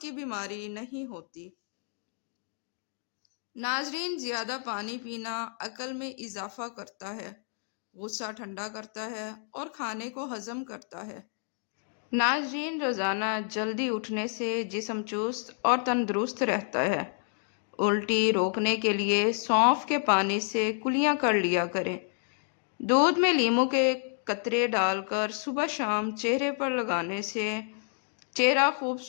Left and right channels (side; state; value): right; silent; 58 dB below the other